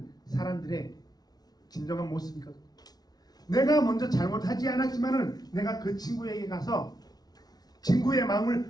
사람들의 진정한 모습이거든요. 내가 먼저 잘못하지 않았지만은 내가 그 친구에게 가서 친구의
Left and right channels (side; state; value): right; late; 0.19 ms